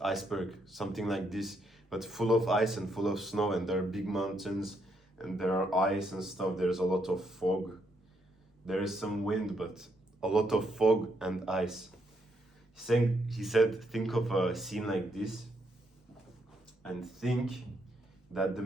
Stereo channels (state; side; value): normal; both; correlation 0.76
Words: iceberg, something like this, but full of ice and full of snow, and there are big mountains, and there are ice and stuff, there's a lot of fog, there is some wind, but a lot of fog and ice. He said, think of a scene like this, and think that the